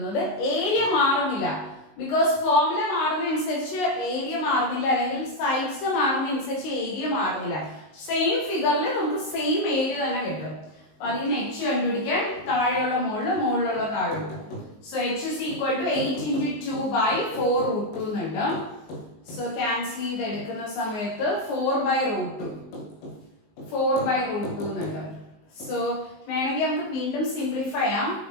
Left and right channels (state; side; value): late; right; 19 ms